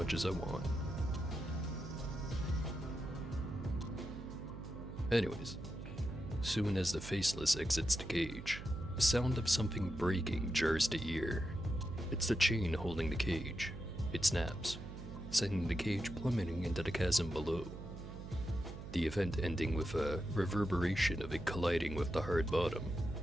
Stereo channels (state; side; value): noise; right; hum, 10 dB below the sound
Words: as I want. Anyways, soon as the faceless exits the cage, the sound of something breaking jars the ear. It's the chain holding the cage. It snaps, sending the cage plummeting into the chasm below. The event ending with a reverberation of it colliding with the hard bottom.